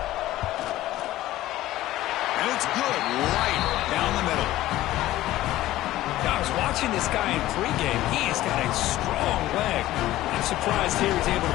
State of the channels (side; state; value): right; quieter; 15.4 dB